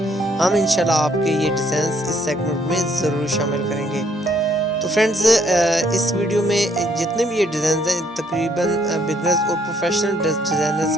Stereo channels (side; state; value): both; normal; correlation 0.67